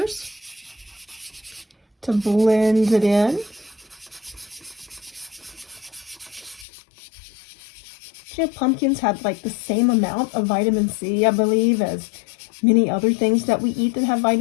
to blend it in. You know, pumpkins have like the same amount of vitamin C, I believe, as many other things that we eat that have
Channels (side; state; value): right; drops out; at 6.7 s